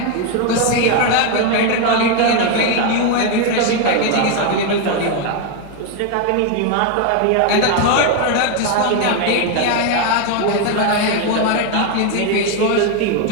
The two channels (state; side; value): different; both; correlation 0.01